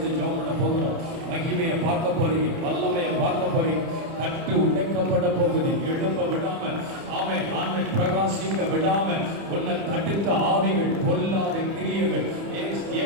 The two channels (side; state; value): left; late; 30 ms